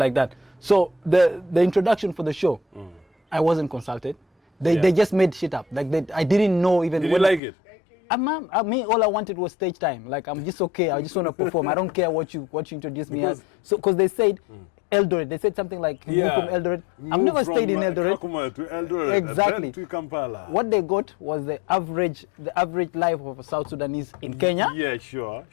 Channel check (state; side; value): drops out; right; at 7.4 s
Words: that. So the introduction for the show, I wasn't consulted. They just made shit up. Like I didn't know even. Did you like it? Me, all I wanted was stage time. Like I'm just okay. I just want to perform. I don't care what you introduce me as. So because they said Eldoret, they said something like move from Eldoret. I've never stayed in Eldoret. Kakuma to Eldoret. Exactly. To Kampala. What they got was the average life of a South Sudanese in Kenya. Yeah, sure.